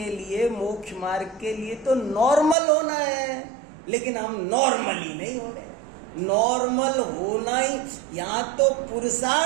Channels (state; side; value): drops out; left; at 2.6 s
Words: लिए, मोक्ष मार्ग के लिए तो नॉर्मल होना है, लेकिन हम नॉर्मल ही नहीं हो रहे। नॉर्मल होना ही, यहाँ तो